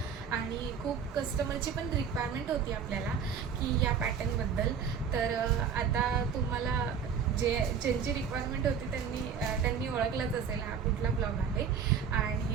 आणि खूप कस्टमरची पण रिक्वायरमेंट होती आपल्याला की या पॅटर्नबद्दल. तर आता तुम्हाला ज्यांची रिक्वायरमेंट होती त्यांनी ओळखलंच असेल हा कुठला ब्लॉग आहे.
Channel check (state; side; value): quieter; left; 6.9 dB